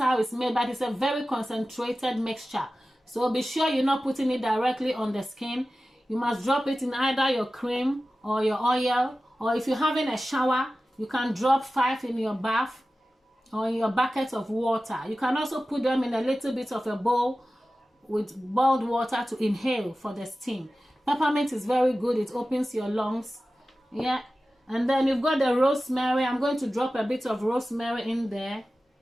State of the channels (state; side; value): normal; both; correlation 0.95